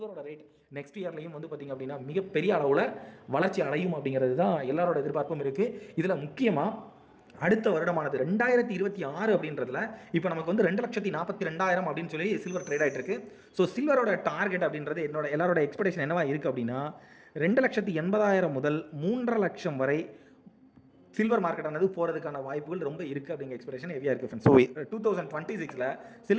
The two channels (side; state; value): both; identical; correlation 1.00